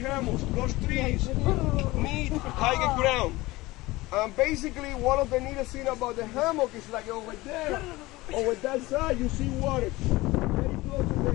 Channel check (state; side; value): quieter; right; 20.0 dB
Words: those trees need higher ground. And basically one of the neatest things about the hammock is like over there, over that side you see water. Very close